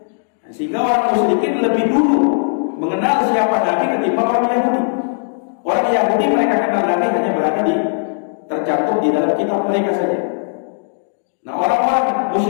Sehingga orang musyrikin lebih dulu mengenal siapa Nabi ketimbang orang Yahudi. Orang Yahudi mereka kenal Nabi hanya berada tercantum di dalam kitab mereka saja. Nah orang-orang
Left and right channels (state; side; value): silent; right; digital silence